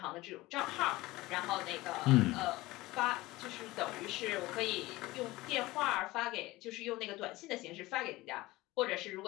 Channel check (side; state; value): right; quieter; 19.5 dB